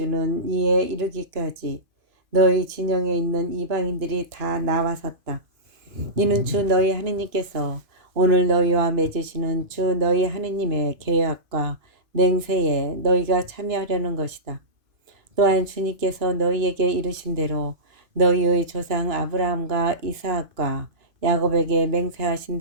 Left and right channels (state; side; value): late; left; 2.5 ms